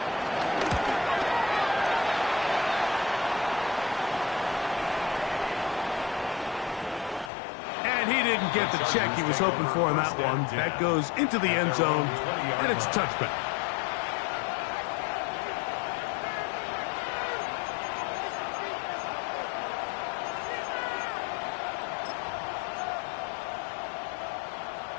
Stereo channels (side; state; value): right; drops out; at 7.3 s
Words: And he didn't get the check he was hoping for on that one. That goes into the end zone, and it's a touchback.